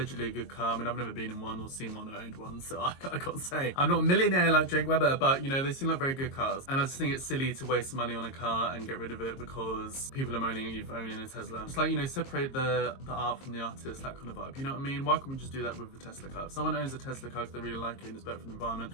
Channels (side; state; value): right; late; 22 ms